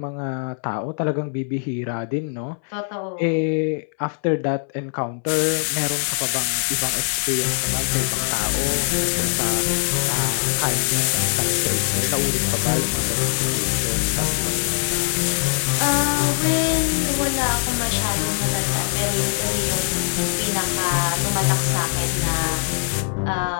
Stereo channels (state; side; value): silent; right; 63 dB below the other